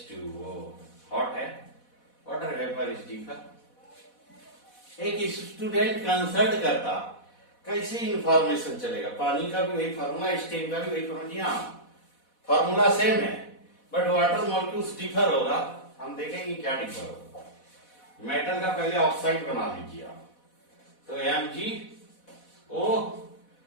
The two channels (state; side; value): late; right; 4.1 ms